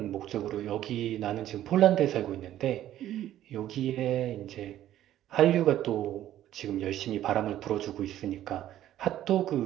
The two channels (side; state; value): left; quieter; 12.5 dB